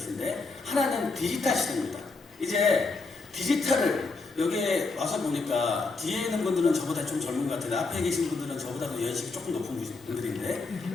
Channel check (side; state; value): right; quieter; 3.8 dB